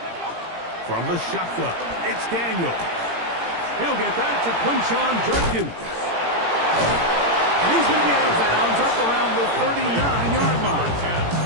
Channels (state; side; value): late; left; 17 ms